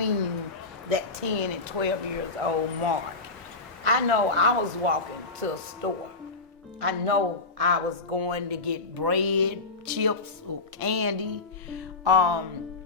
that 10 and 12 years old mark? I know I was walking to a store. I know I was going to get bread, chips, or candy.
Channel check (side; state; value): right; quieter; 3.6 dB